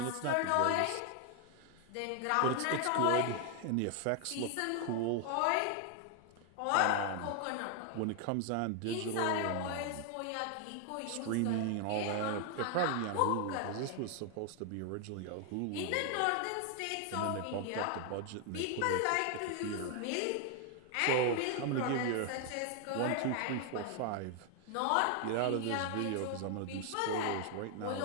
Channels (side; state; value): both; different; correlation 0.00